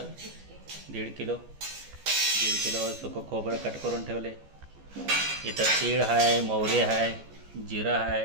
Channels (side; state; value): left; late; 14 ms